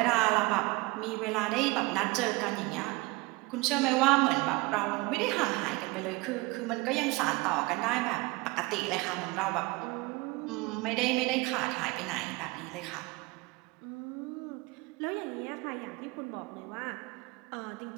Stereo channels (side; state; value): left; quieter; 23.9 dB